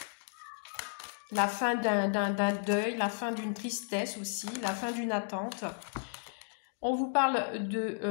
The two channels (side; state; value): right; silent; digital silence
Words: la fin d'un deuil, la fin d'une tristesse aussi, la fin d'une attente. On vous parle